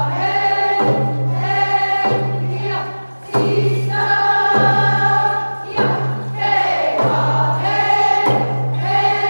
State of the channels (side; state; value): both; inverted; correlation -1.00